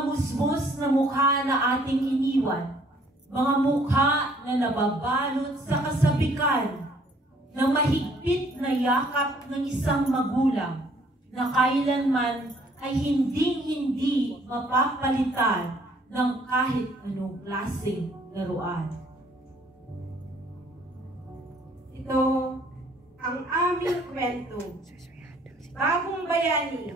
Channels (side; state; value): both; normal; correlation 0.61